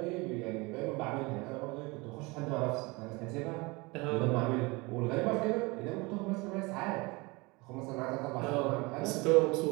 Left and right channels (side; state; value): left; quieter; 25.2 dB